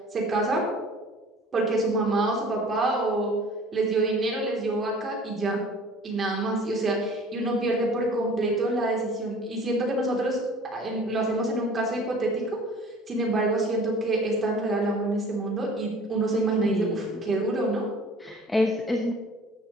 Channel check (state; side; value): normal; both; correlation 0.47